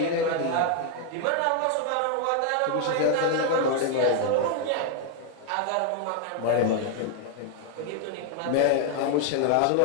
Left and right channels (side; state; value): both; different; correlation 0.00